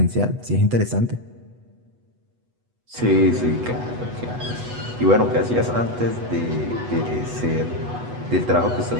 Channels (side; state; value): left; late; 8.1 ms